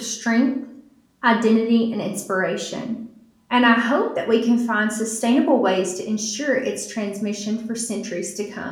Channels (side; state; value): both; identical; correlation 1.00